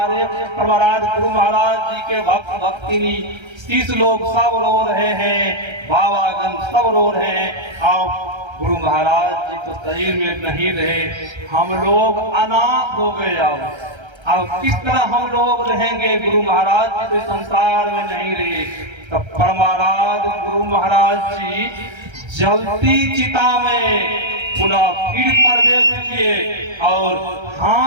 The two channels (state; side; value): late; left; 1.3 ms